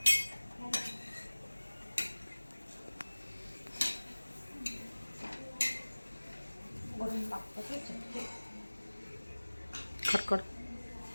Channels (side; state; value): both; inverted; correlation -1.00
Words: वरून लागतं ते चटके. कट.